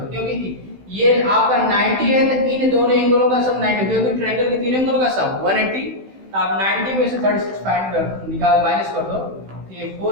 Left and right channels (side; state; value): left; late; 16 ms